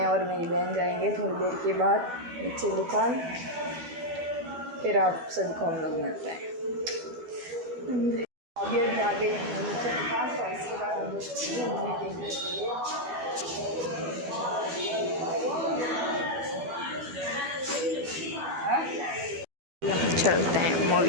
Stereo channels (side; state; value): left; late; 12 ms